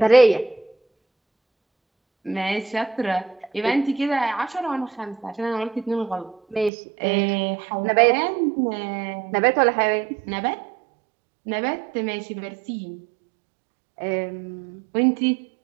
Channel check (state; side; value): drops out; left; at 6.7 s